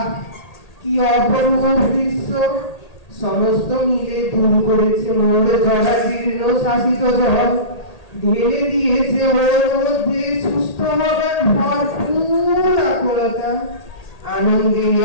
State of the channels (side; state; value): right; late; 1.8 ms